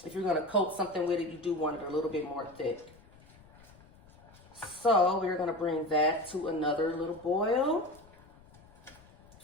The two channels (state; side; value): noise; left; rumble, 25 dB below the sound